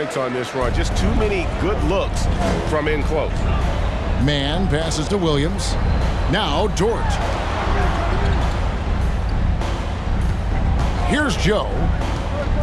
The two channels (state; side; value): identical; both; correlation 1.00